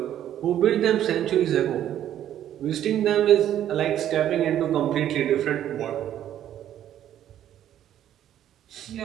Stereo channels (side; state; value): left; quieter; 11.2 dB